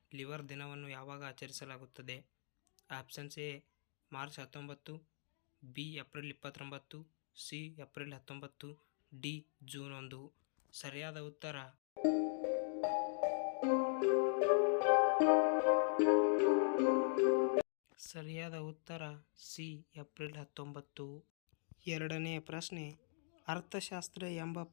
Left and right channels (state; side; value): silent; right; digital silence